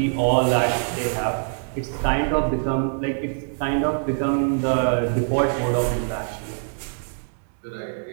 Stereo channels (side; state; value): left; silent; digital silence